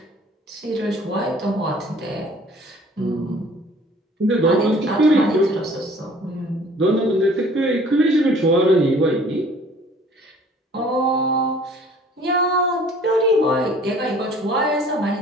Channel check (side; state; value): both; normal; correlation 0.53